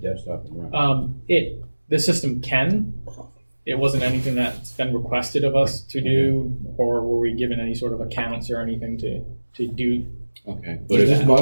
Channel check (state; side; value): inverted; both; correlation -1.00